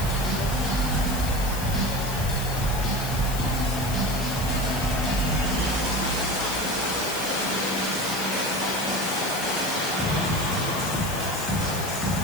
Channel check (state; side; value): noise; left; hiss, 8 dB below the sound